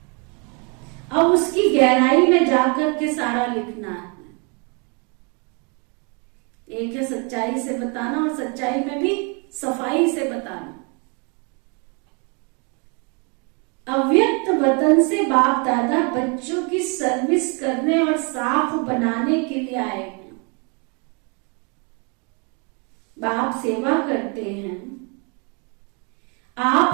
अब उसकी गहराई में जाकर के सारा लिखना है। एक है सच्चाई से बताना और सच्चाई में भी सफाई से बताना। अव्यक्त वतन से बाप दादा बच्चों की सर्विस करने और साफ बनाने के लिए आए हैं। बाप सेवा करते हैं। आप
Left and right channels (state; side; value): quieter; left; 34.1 dB